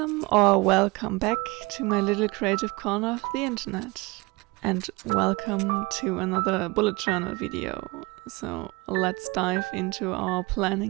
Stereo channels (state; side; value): quieter; left; 24.6 dB